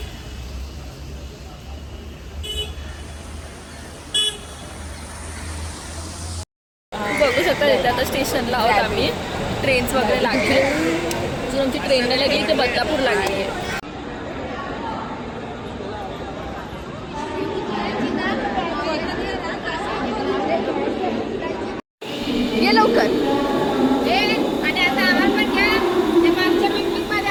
बघू शकता इथे आता स्टेशनला आहोत आम्ही. ट्रेन्स वगैरे लागले. जर आमची ट्रेन नाही लागली ते बदलापूर लागली आहे. ये लवकर.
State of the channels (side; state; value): both; identical; correlation 1.00